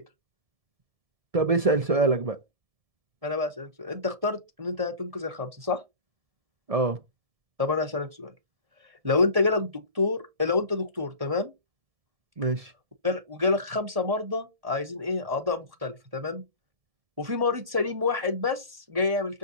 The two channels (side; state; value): left; late; 1.7 ms